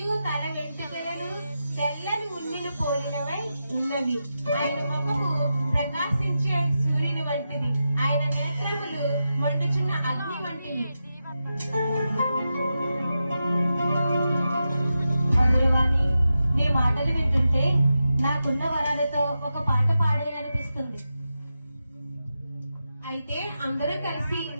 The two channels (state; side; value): inverted; both; correlation -0.89